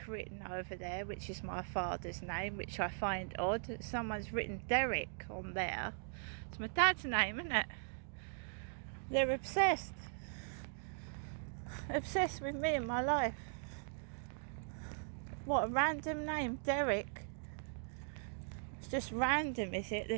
written over there, which is my father's name, which I find odd. Someone's written Derek on there. It's my dad's name, isn't it? They're obsessed with me and my life. What a random name, Derek. It's just random, is it?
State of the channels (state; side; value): silent; left; digital silence